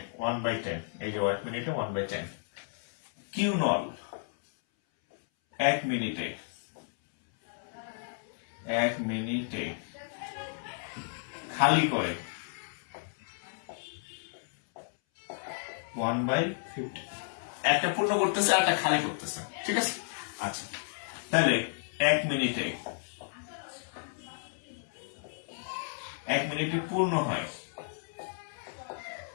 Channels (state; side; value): silent; right; 56 dB below the other